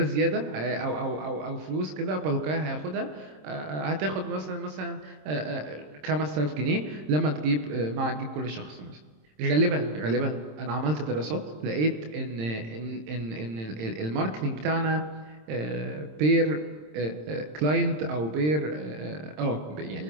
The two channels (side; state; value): left; late; 26 ms